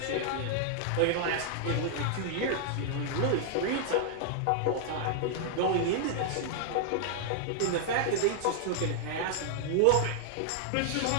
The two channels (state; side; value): different; both; correlation -0.01